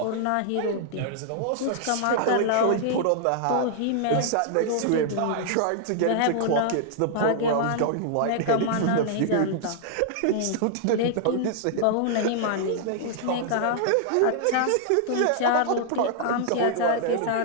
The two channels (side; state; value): both; different; correlation -0.01